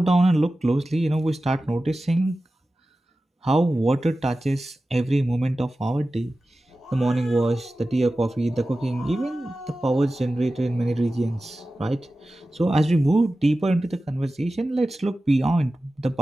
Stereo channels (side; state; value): both; normal; correlation 0.95